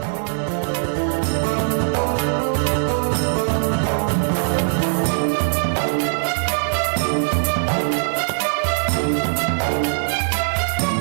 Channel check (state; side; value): silent; left; 65 dB below the other